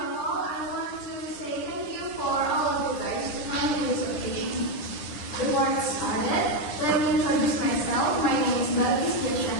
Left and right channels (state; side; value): late; right; 9.9 ms